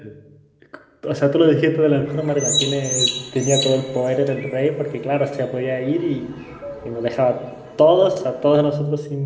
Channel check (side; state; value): both; identical; correlation 1.00